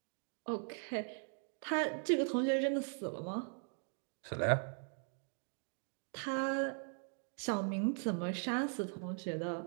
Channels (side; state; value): left; silent; 51 dB below the other